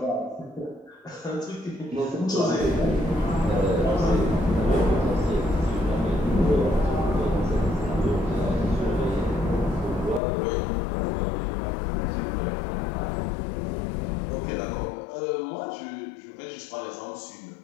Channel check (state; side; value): drops out; right; at 10.2 s